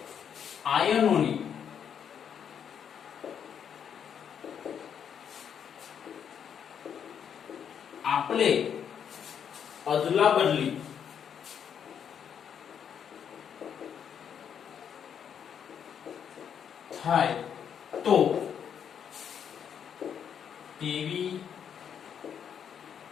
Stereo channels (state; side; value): quieter; right; 8.1 dB